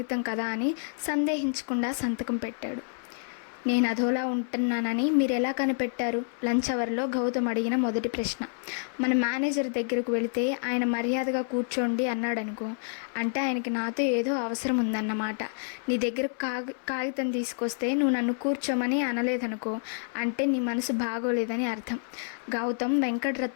కదా అని సందేహించకుండా సంతకం పెట్టాడు. నేను అదోలా ఉంటున్నానని మీరు ఎలా కనిపెట్టారు? లంచ్ అవర్లో గౌతమ్ అడిగిన మొదటి ప్రశ్న. మన మేనేజర్ దగ్గరకు వెళితే ఆయన మర్యాదగా కూర్చోండి అన్నాడనుకో, అంటే ఆయనకి నాతో ఏదో అవసరం ఉందన్నమాట. నీ దగ్గర కాగితం తీసుకొస్తే నువ్వు నన్ను కూర్చోమని అనలేదనుకో, అంటే నీ మనసు బాగోలేదని అర్థం. గౌతమ్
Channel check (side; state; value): right; silent; 59 dB below the other